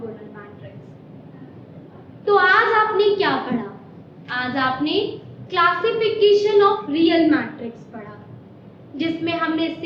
matrix. तो आज आपने क्या पढ़ा? आज आपने क्लासिफिकेशन ऑफ रियल मैट्रिक्स पढ़ा, जिसमें हमने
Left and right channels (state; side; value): identical; both; correlation 1.00